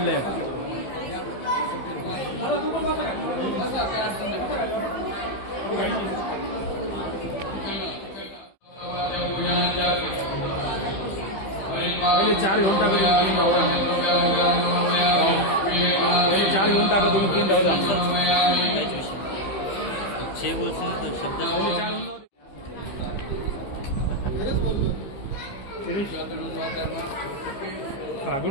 पहिले 4 घेऊन टाका तुम्ही, 3 राहू द्या. पहिले 4 घेऊन टाका तुम्ही, 3 राहू द्या.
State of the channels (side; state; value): right; late; 15 ms